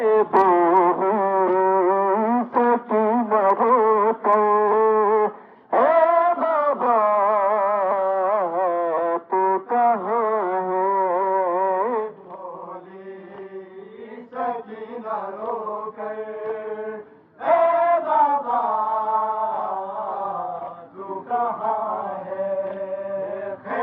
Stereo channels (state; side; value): identical; both; correlation 1.00